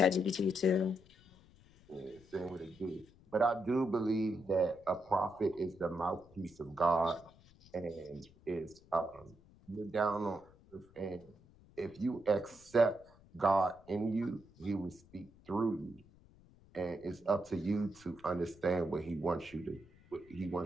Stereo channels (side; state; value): left; noise; rumble, 26 dB below the sound